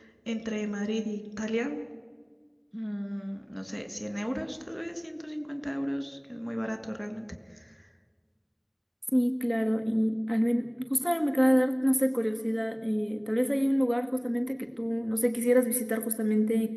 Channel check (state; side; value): identical; both; correlation 1.00